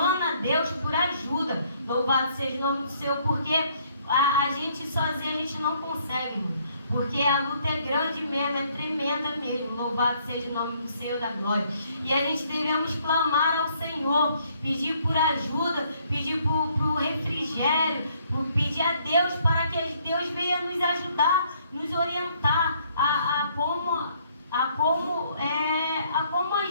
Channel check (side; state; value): both; inverted; correlation -0.66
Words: a Deus por ajuda. Louvado seja o nome do Senhor, porque a gente sozinho a gente não consegue, irmão. Porque a luta é grande mesmo, é tremenda mesmo. Louvado seja o nome do Senhor da glória. E a gente devemos clamar ao Senhor, pedir por ajuda, pedir por refrigério, pedir a Deus para que Deus venha nos ajudar, nos orientar a como